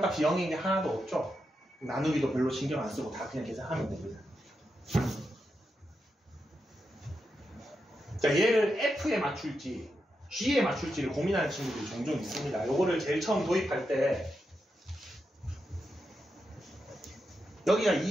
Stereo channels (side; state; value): both; normal; correlation 0.86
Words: 0인 게 하나도 없죠. 나누기도 별로 신경 안 쓰고 다 그냥 계산하면 됩니다. 자, 얘를 F에 맞출지 G에 맞출지를 고민하는 친구들이 종종 있습니다. 요거를 제일 처음 도입할 때 여기가